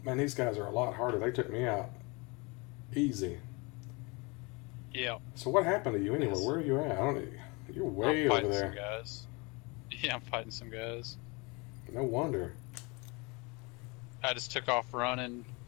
Man, these guys are a lot harder. They took me out easy. Yeah. So what happened to you anyway? Where are you at? You're way over there. Some guys. Yeah, I'm fighting some guys. No wonder. I just took off running.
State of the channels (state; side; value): quieter; right; 28.0 dB